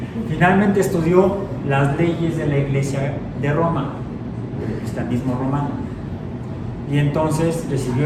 Finalmente estudió las leyes de la Iglesia de Roma, del cristianismo romano. Y entonces recibió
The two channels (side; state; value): both; identical; correlation 1.00